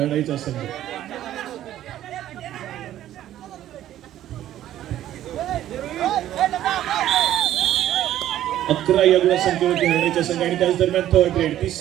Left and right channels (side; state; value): left; quieter; 12.5 dB